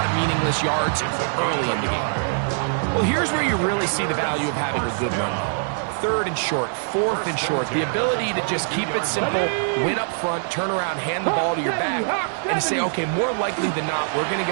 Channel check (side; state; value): left; silent; digital silence